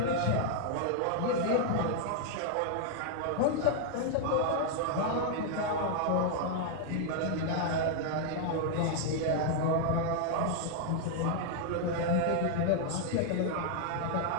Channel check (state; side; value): different; both; correlation 0.00